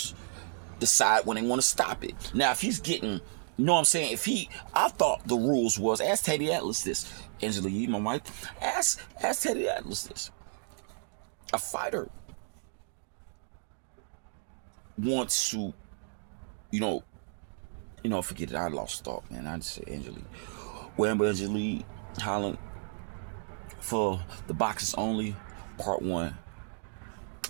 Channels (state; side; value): silent; left; digital silence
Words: decide when they want to stop it. Now, if he's getting, you know what I'm saying? I thought the rules was, ask Teddy Atlas this. Angela Yee, my wife, ask Teddy Atlas this. A fighter wants to, you know, forget it. I lost thought, man. I just said Angela Yee. Angela Yee, Holland, for the boxers only, part 1.